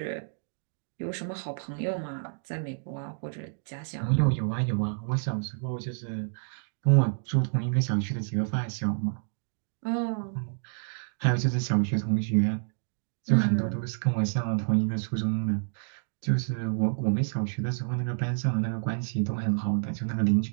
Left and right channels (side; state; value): left; silent; digital silence